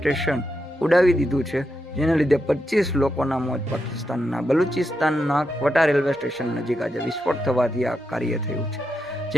ઉડાવી દીધું છે, જેના લીધે 25 લોકોના મોત પાકિસ્તાનના બલુચિસ્તાનના કોટા રેલવે સ્ટેશન નજીક આજે વિસ્ફોટ થવાથી આ કાર્ય થયું છે,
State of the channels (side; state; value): both; normal; correlation 0.85